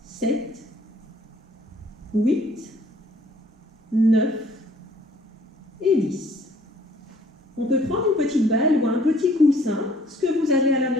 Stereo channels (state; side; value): normal; both; correlation 0.58